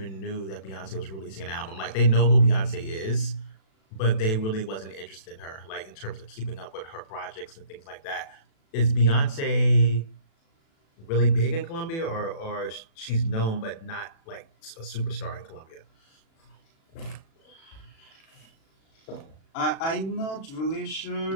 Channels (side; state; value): right; late; 36 ms